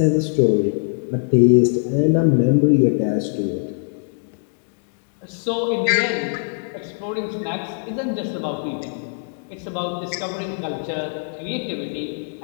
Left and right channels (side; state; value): right; silent; digital silence